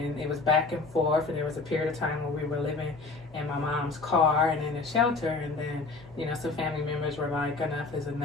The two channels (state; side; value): quieter; right; 3.8 dB